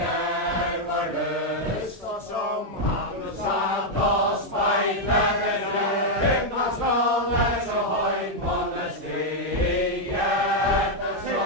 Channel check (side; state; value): both; normal; correlation -0.01